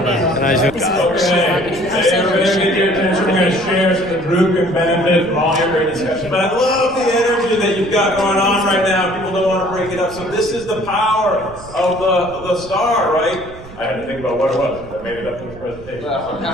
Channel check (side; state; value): right; noise; rumble, 18 dB below the sound